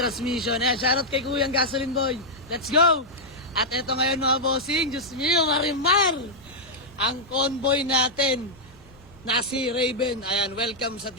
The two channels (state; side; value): noise; left; rumble, 27 dB below the sound